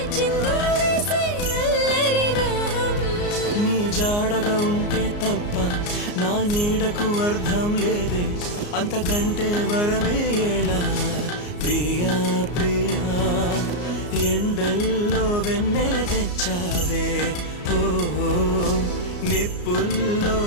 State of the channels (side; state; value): right; late; 34 ms